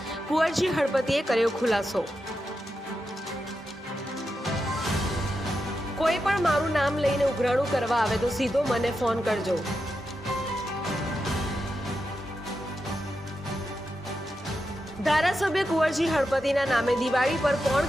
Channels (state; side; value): normal; both; correlation 0.88